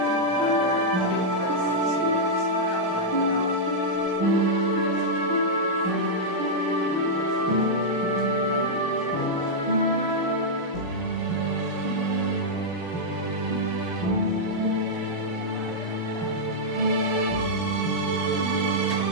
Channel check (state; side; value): normal; both; correlation -0.06